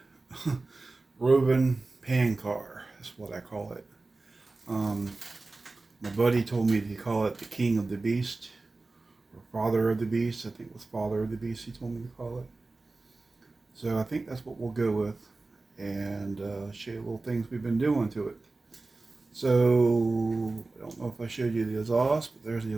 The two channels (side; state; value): left; quieter; 3.4 dB